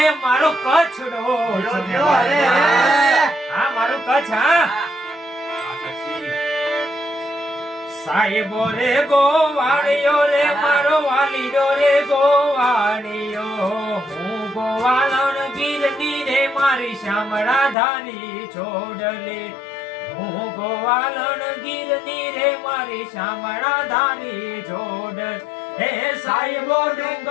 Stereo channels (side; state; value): right; drops out; at 17.8 s